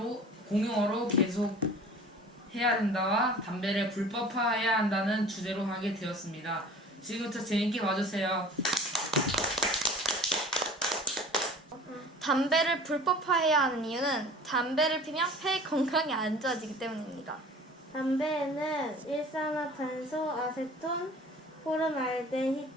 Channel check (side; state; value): both; normal; correlation 0.44